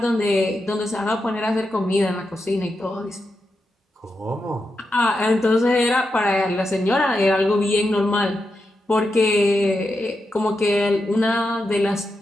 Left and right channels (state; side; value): normal; both; correlation 0.87